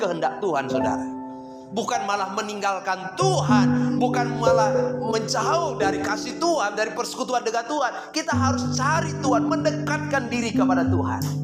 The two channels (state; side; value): identical; both; correlation 1.00